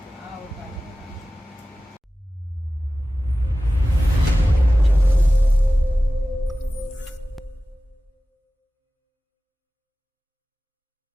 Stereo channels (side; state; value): both; normal; correlation 0.96